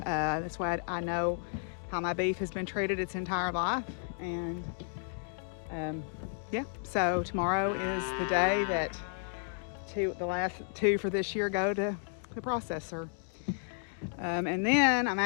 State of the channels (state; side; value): silent; right; digital silence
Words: That's why I know how my beef has been treated its entire life. And yeah, so tomorrow is the day that the last two for this year go to the processor. And then I'm